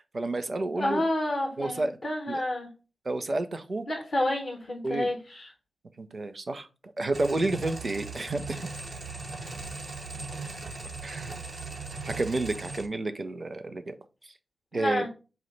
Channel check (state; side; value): normal; both; correlation 0.92